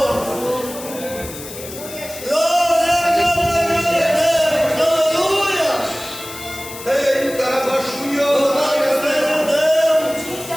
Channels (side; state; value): left; noise; hiss, 13 dB below the sound